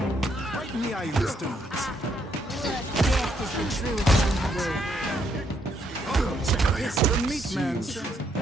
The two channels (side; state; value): both; normal; correlation 0.73